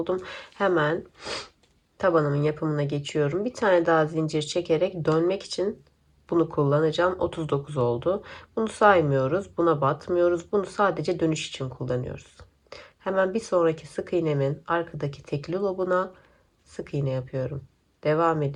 Hemen tabanımın yapımına geçiyorum. Bir tane daha zincir çekerek dönmek için bunu kullanacağım. 39 oldu. Bunu saymıyoruz. Buna batmıyoruz. Bunu sadece dönüş için kullanıyoruz. Hemen bir sonraki sık iğnemin arkadaki tekli lobuna sık iğne yapıyorum. Devam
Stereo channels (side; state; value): both; identical; correlation 1.00